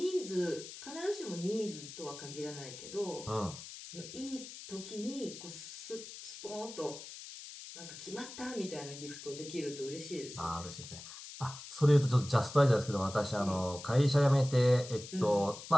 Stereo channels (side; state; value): left; noise; hiss, 13 dB below the sound